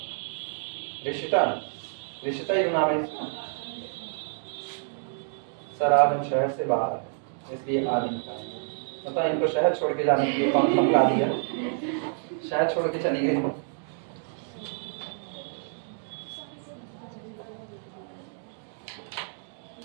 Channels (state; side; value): silent; left; digital silence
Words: ऋषिता, ऋषिता ही नाम है इसका। सर आज हम शहर से बाहर है इसलिए आज नहीं पाएंगे। पता इनको शहर छोड़ के जाने के लिए कौन धमका दिया, शहर छोड़ के चली गई।